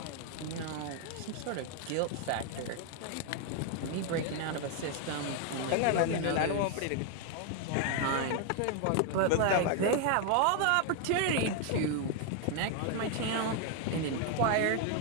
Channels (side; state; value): both; different; correlation 0.01